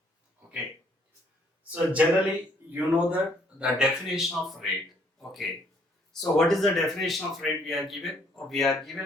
Okay. So generally, you know that the definition of rate. Okay. So what is the definition of rate we are given? We are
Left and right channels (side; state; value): both; normal; correlation 0.65